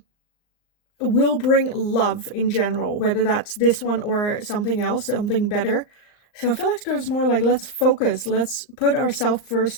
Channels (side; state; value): right; late; 39 ms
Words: will bring love in general, whether that's this one or something else, something better. So I feel like there's more like, let's focus. Let's put ourselves